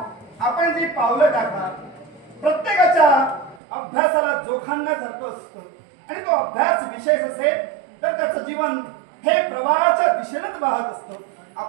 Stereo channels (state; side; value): drops out; left; at 3.6 s